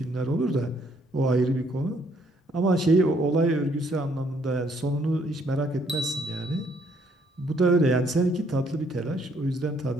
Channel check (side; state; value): both; normal; correlation 0.67